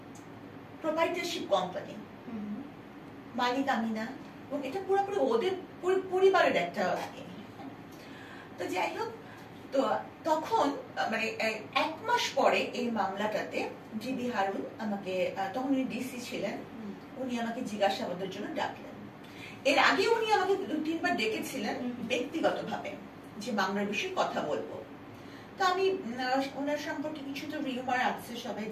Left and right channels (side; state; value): both; identical; correlation 1.00